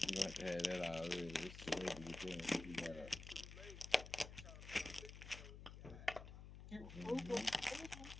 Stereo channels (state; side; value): noise; left; hum, 12 dB below the sound